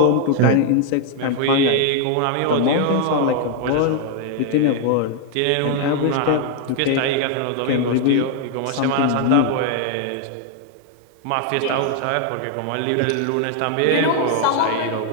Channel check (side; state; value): both; different; correlation 0.00